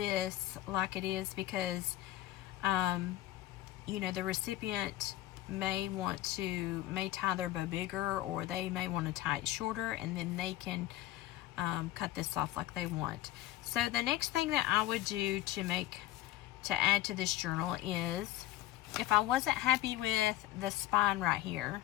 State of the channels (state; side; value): quieter; right; 15.1 dB